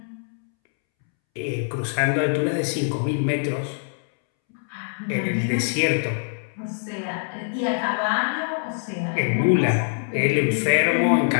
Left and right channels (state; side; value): silent; right; 63 dB below the other